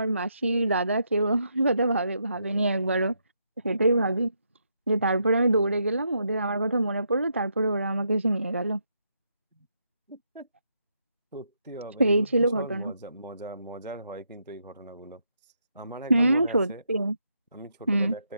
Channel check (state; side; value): inverted; both; correlation -0.79